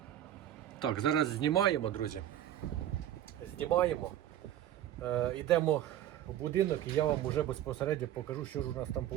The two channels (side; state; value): left; quieter; 11.8 dB